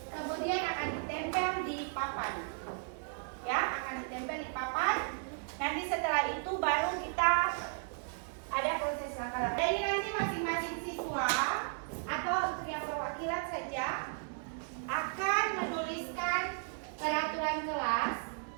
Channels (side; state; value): left; silent; 54 dB below the other